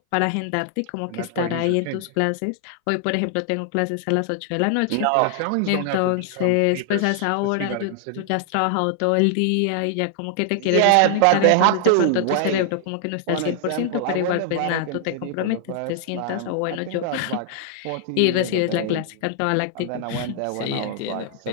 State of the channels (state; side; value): different; both; correlation -0.01